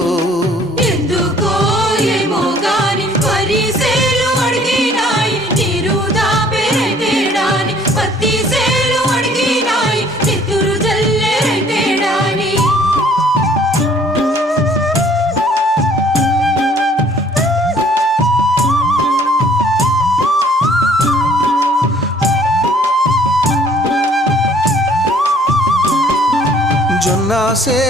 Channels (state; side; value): normal; both; correlation 0.57